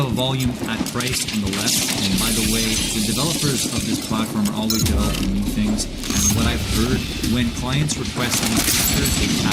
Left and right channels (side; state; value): both; identical; correlation 1.00